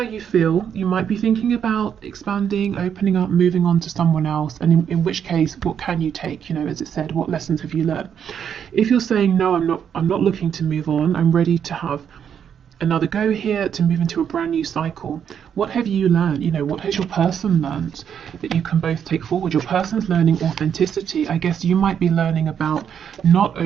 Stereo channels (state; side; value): quieter; left; 8.2 dB